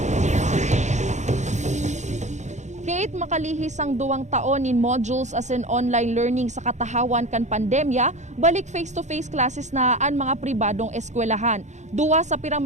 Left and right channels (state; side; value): late; left; 0.34 ms